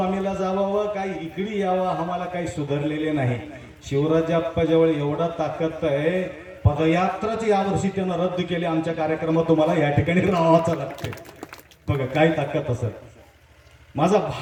जावावं काही इकडे यावं आम्हाला काही सुधारलेले नाही. शिवराजप्पाजवळ एवढा ताकद आहे, पदयात्राच यावर्षी त्यानं रद्द केली. आमच्या कार्यक्रमात तुम्हाला या ठिकाणी राहावंच लागते. बघा काय ताकद असत. माझा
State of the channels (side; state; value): both; identical; correlation 1.00